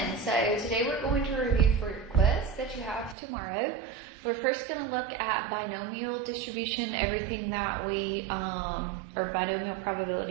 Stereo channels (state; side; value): drops out; left; at 3.2 s